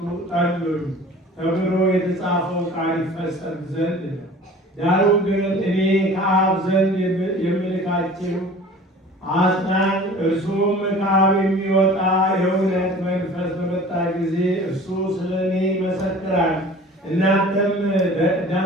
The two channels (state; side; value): normal; both; correlation 0.44